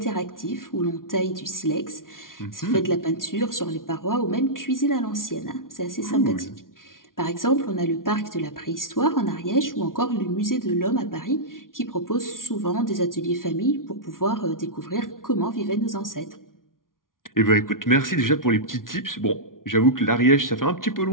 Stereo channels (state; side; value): late; right; 0.90 ms